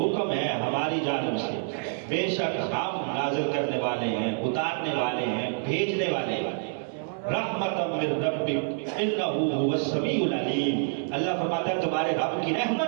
ہے ہماری جانب سے، بے شک ہم نازل کرنے والے ہیں، اتارنے والے ہیں، بھیجنے والے ہیں۔ رحمتا من ربک انہ هو السمیع العلیم، اللہ فرماتا ہے تمہارے رب کی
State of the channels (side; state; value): left; silent; 60 dB below the other